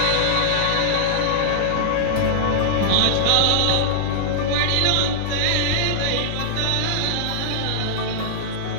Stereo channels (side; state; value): both; different; correlation -0.01